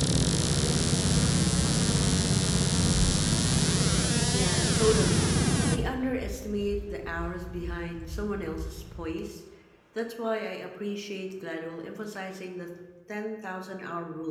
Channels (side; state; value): both; identical; correlation 1.00